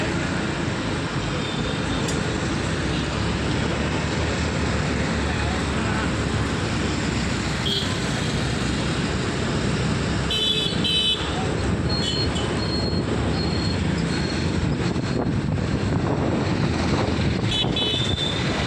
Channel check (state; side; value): identical; both; correlation 1.00